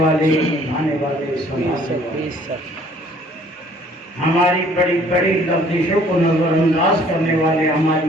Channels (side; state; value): both; normal; correlation 0.57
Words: نبھانے والے ہماری بڑی بڑی لفظوں کو نظر انداز کرنے والے ہماری